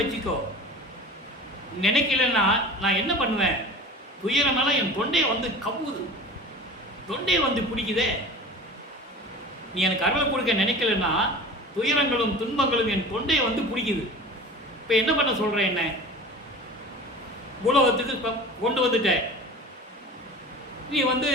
வச்சுக்கோ. நினைக்கலன்னா நான் என்ன பண்ணுவேன்? துயரமெல்லாம் என் தொண்டையை வந்து கவுது, தொண்டையை வந்து பிடிக்குதே. நீ எனக்கு அருளை கொடுக்க நினைக்கலன்னா துயரங்களும் துன்பங்களும் என் தொண்டையை வந்து பிடிக்குது. இப்போ என்ன பண்ண சொல்கிறேன்? என்ன உலகத்துக்கு இப்போ கொண்டு வந்துட்ட. நீ வந்து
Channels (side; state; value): both; normal; correlation 0.37